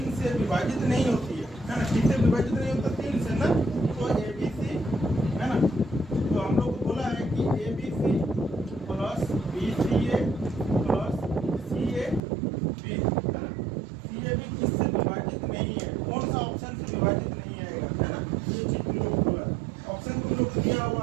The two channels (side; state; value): left; drops out; at 12.2 s